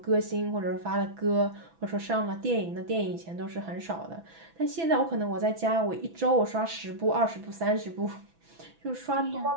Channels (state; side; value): late; left; 6.0 ms